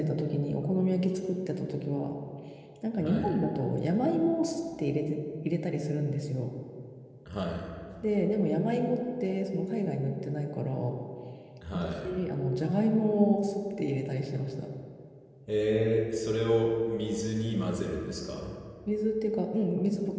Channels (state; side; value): identical; both; correlation 1.00